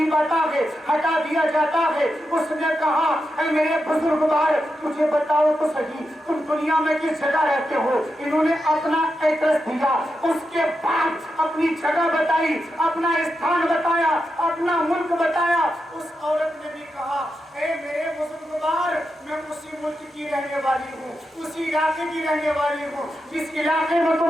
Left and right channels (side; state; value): both; normal; correlation 0.88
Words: آتا ہے ہٹا دیا جاتا ہے۔ اس نے کہا اے میرے بزرگوار مجھے بتاؤ تو صحیح تم دنیا میں کس جگہ رہتے ہو؟ انہوں نے اپنا ایڈریس دیا، اس کے بعد اپنی جگہ بتائی، اپنا استھان بتایا، اپنا ملک بتایا۔ اس عورت نے بھی کہا اے میرے بزرگوار میں اسی ملک کی رہنے والی ہوں، اسی علاقے کی رہنے والی ہوں جس علاقے میں